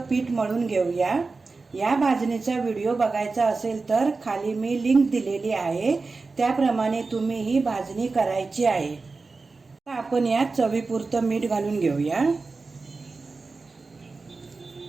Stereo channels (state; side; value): quieter; left; 4.0 dB